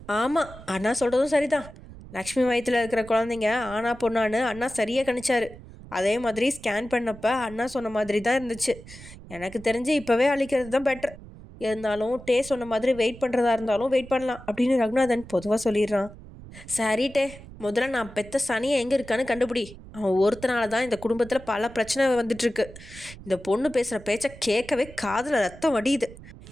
ஆமாம், அண்ணா சொல்கிறதும் சரிதான். லக்ஷ்மி வயிற்றில் இருக்கிற குழந்தைங்க ஆனா பொண்ணான்னு அண்ணா சரியாக கணிச்சாரு. அதே மாதிரி ஸ்கேன் பண்ணப்ப அண்ணா சொன்ன மாதிரி தான் இருந்துச்சு. எனக்கு தெரிஞ்சு இப்போவே அழிக்கிறது தான் பெட்டர். இருந்தாலும் டே சொன்ன மாதிரி வெயிட் பண்ணுறதா இருந்தாலும் வெயிட் பண்ணலாம் அப்படின்னு ரகுநாதன் பொதுவாக சொல்லிடுறான். சரி டே, முதல்ல நான் பெத்த சனியை எங்கே இருக்கான்னு கண்டுபிடி. அவன் ஒருத்தனால தான் இந்த குடும்பத்தில் பல பிரச்சனை வந்துட்டுருக்கு. இந்த பொண்ணு பேசுகிற பேச்சை கேட்கவே காதில் ரத்தம் வடியுது.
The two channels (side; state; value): right; noise; rumble, 17 dB below the sound